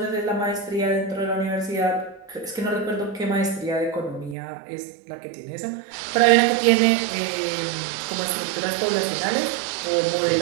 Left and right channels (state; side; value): drops out; left; at 4.4 s